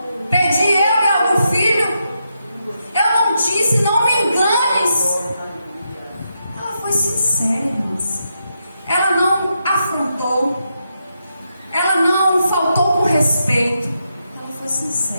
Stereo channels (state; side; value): inverted; both; correlation -0.83